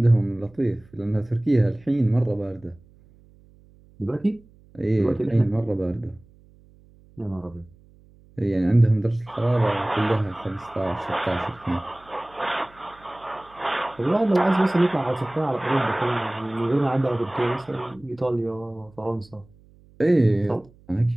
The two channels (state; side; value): noise; right; hum, 27 dB below the sound